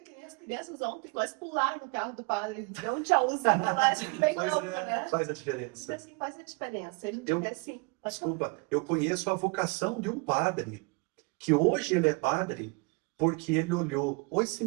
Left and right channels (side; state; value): left; quieter; 29.7 dB